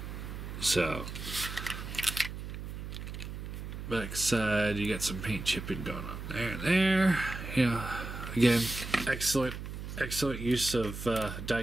So, back side, you got some paint chipping going on there and there. Yeah. Again, excellent use of die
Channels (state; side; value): noise; right; hum, 8 dB below the sound